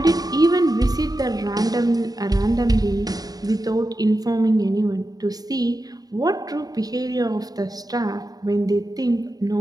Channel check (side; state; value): left; late; 0.18 ms